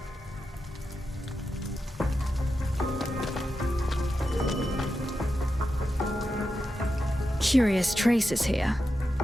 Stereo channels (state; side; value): normal; both; correlation 0.89